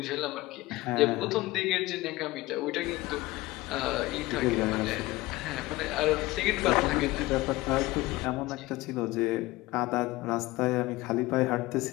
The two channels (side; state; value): right; quieter; 19.3 dB